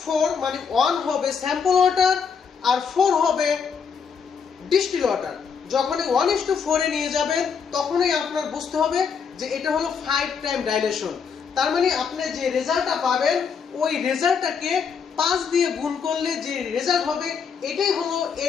মানে 1 হবে স্যাম্পল ওয়াটার আর 4 হবে ডিস্টিল ওয়াটার। যখনই 1:4 এ নিয়ে যাবেন, তখনই আপনার বুঝতে হবে যে এটা হলো 5 টাইম ডাইলেশন। তার মানে আপনি যে রেজাল্টটা পাবেন, ওই রেজাল্টটাকে 5 দিয়ে গুণ করলে যে রেজাল্ট হবে, এটাই হলো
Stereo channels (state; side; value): quieter; right; 6.3 dB